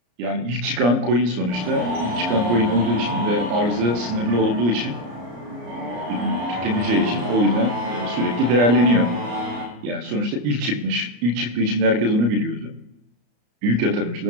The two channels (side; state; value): left; late; 34 ms